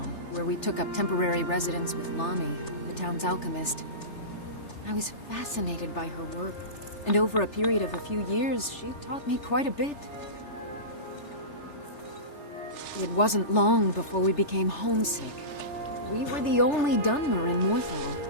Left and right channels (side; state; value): right; late; 3.3 ms